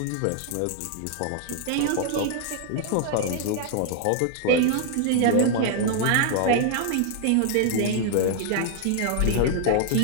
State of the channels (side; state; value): both; different; correlation 0.00